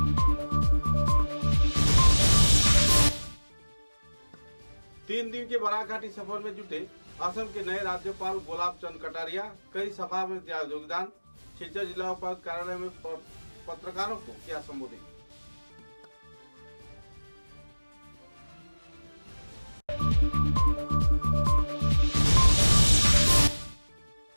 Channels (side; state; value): both; inverted; correlation -1.00